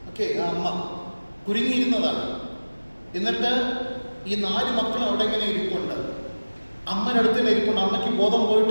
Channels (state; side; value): inverted; both; correlation -1.00